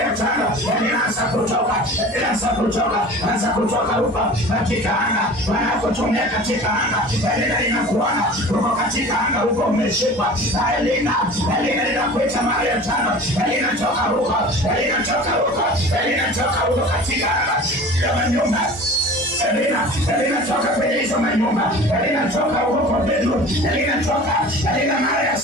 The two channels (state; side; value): normal; both; correlation 0.40